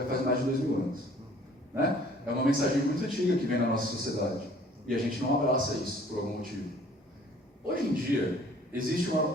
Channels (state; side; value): normal; both; correlation 0.54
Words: faz mais de 2000 anos. Né? É uma mensagem muito antiga que vem na nossa sociedade. E a gente não abraça isso por algum motivo. Hoje em dia, existe